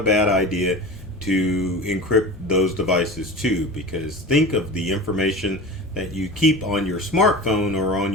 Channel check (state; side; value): normal; both; correlation 0.32